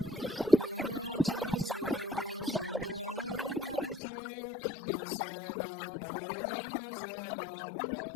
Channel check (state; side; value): drops out; right; at 4.0 s